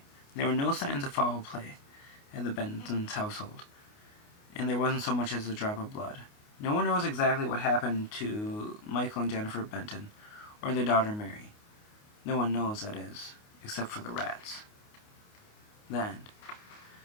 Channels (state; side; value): late; right; 28 ms